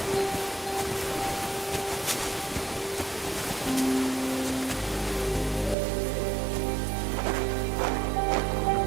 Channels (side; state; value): left; drops out; at 5.8 s